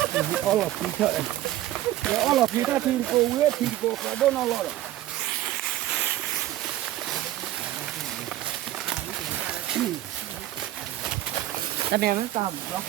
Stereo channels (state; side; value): quieter; left; 14.0 dB